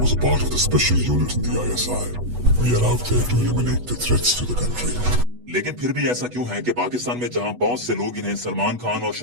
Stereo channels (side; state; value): left; late; 8.2 ms